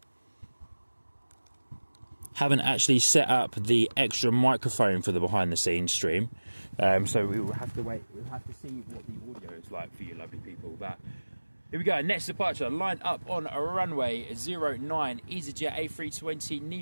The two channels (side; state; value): both; inverted; correlation -1.00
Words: Haven't actually set up the extra microphone for the behind the scenes stream, so we will have to wait. We'll have to see what the audio is like for you lovely people. But here we go, next departure lined up on a runway 09 EasyJet A320